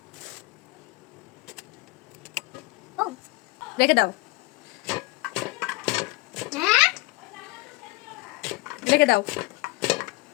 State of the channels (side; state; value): right; quieter; 22.2 dB